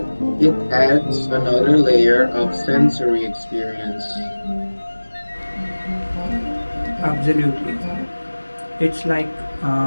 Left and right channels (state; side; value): inverted; both; correlation -1.00